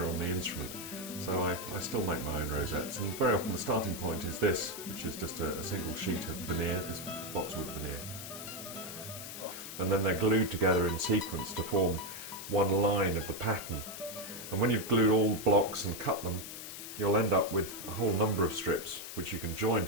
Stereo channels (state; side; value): noise; left; hiss, 9 dB below the sound